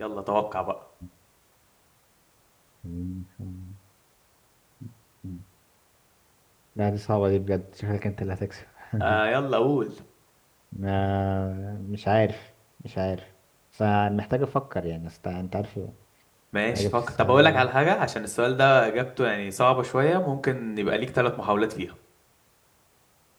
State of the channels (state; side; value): identical; both; correlation 1.00